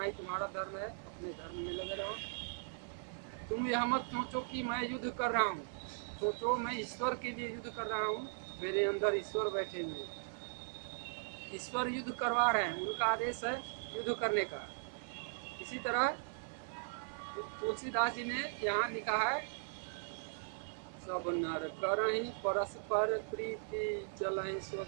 ही तुम्हारा धर्म है, ये धर्म में लगे रहो। तुम यह मत सोचो कि मैं युद्ध कर रहा हूँ, सोचो मैं ईश्वर के लिए युद्ध कर रहा हूँ। मेरे अंदर ईश्वर बैठे हुए, ईश्वर युद्ध करवा रहे हैं, उनका आदेश है युद्ध करने का। इसी तरह तुलसीदास जी ने यहाँ लिखा है, सब नर करहि परस्पर प्रीति, चलहि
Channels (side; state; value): left; silent; 52 dB below the other